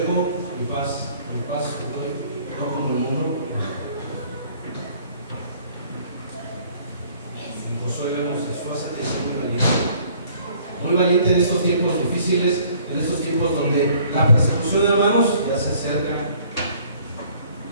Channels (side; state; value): both; inverted; correlation -0.57